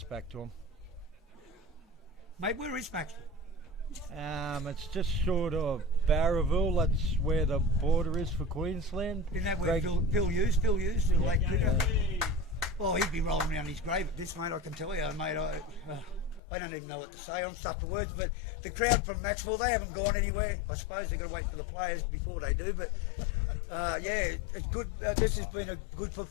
back to him. Mate, where is Maxwell? It's just short of Barraville. That's where the border is for Queensland. Isn't that where Bill Hughes, the late cricket? Yeah. Oh, he'd be rolling around his grave at this, mate, I can tell you, mate. I don't even know what to say. I'm stuck for words, but the crowd from Macksville, they haven't gone anywhere. I suppose they're going to wait for the players before they do, but yeah, it's good. This has been a good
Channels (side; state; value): right; drops out; at 16.4 s